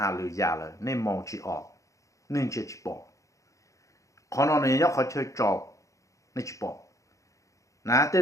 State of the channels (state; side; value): late; right; 0.15 ms